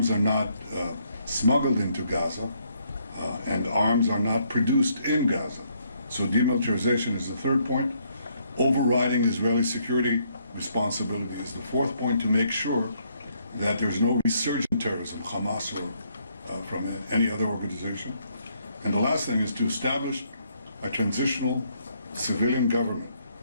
are not smuggled into Gaza, and arms are not produced in Gaza. So demilitarization is the third point. Overriding Israeli security responsibility is the fourth point, to make sure that there's no resurgent terrorism, Hamas or from any other organization. And the last thing is to establish a transitional civilian government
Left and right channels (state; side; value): inverted; both; correlation -0.71